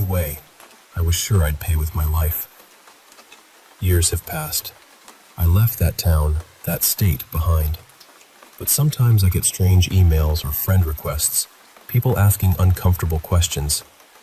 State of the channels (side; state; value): both; identical; correlation 1.00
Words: way, I was sure I'd pay with my life. Years have passed. I left that town, that state behind. But sometimes I get strange emails or friend requests, people asking uncomfortable questions.